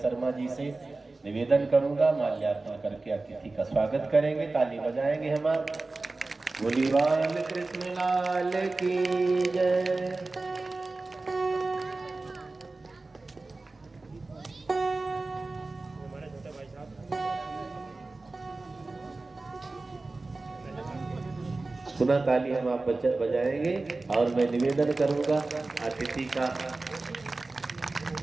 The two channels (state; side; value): quieter; left; 3.4 dB